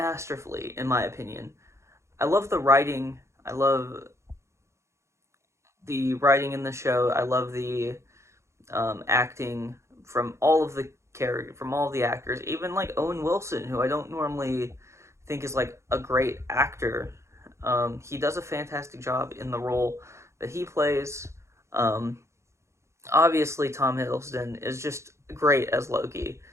in my opinion. I love the writing. I love the writing in the show. I love the acting from all of the actors, even like Owen Wilson, who I don't normally think is like a great actor. He does a fantastic job in the role that he plays. Um, Obviously, Tom Hiddleston is just great as Loki.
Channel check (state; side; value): late; left; 0.14 ms